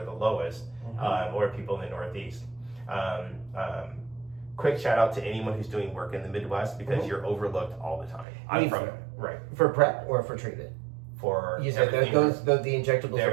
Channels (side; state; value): left; drops out; at 8.2 s